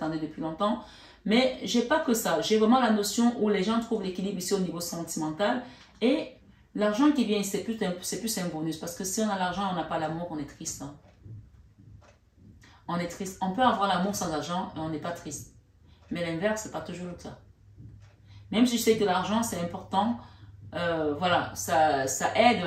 depuis longtemps. Mais je n'ai pas que ça. J'ai vraiment la notion où les gens trouvent l'équilibre ici au niveau sentimental. Et l'argent qui vient ici, c'est plus un bonus. Parce que si on a l'argent et on n'a pas l'amour, on est triste. Hein. On est triste. On peut avoir l'amour sans argent et on n'est pas triste. Mais l'inverse, ce n'est pas toujours le cas. Même si je sais que l'argent, c'est important, voilà, ça aide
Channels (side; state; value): both; identical; correlation 1.00